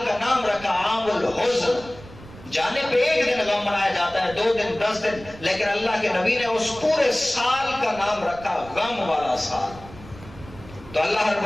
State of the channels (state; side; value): noise; right; rumble, 18 dB below the sound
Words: کا نام رکھا عام الحزن۔ جانے پہ ایک دن غم منایا جاتا ہے، 2 دن 10 دن، لیکن اللہ کے نبی نے اس پورے سال کا نام رکھا غم والا سال۔ تو اللہ